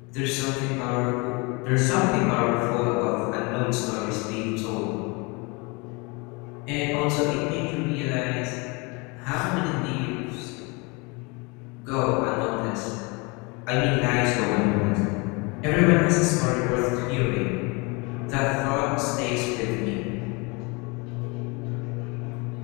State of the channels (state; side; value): quieter; right; 28.6 dB